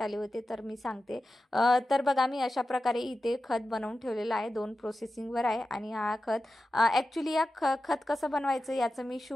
आले होते, तर मी सांगते. तर बघा मी अशा प्रकारे इथे खत बनवून ठेवलेलं आहे. 2 प्रोसेसिंगवर आहे आणि हा खत ॲक्च्युली या खत कसं बनवायचं याचं मी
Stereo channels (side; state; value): both; normal; correlation 0.93